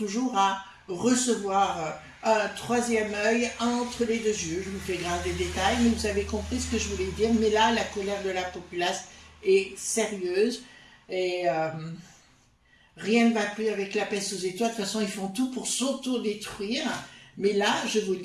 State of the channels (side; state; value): both; identical; correlation 1.00